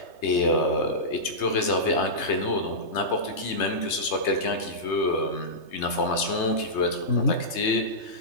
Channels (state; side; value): late; right; 3.3 ms